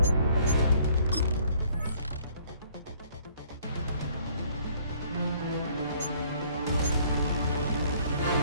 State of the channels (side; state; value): both; inverted; correlation -0.59